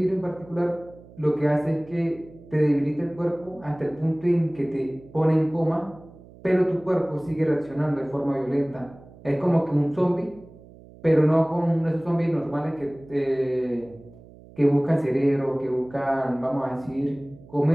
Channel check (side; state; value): right; noise; hum, 22 dB below the sound